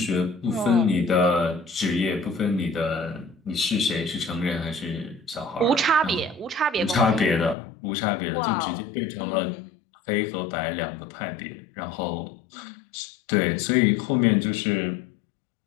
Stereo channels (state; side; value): drops out; right; at 7.6 s